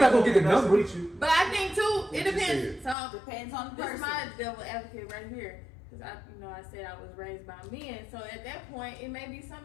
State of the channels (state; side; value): drops out; right; at 3.0 s